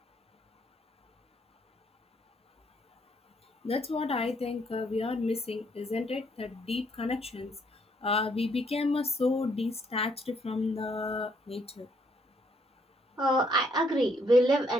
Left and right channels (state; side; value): normal; both; correlation 0.70